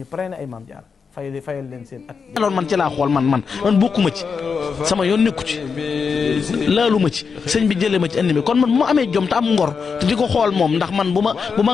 pare na ay maam jaara fayal leen seen at alors man ci laa xool man bokkuma ci sama yoon nekku ci laalu ma ci sëñ bi jëlee ma ci indi mi kon man bu ma amee jom te am ngor te di ko xool moom ndax man bu ma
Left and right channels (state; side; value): quieter; right; 5.6 dB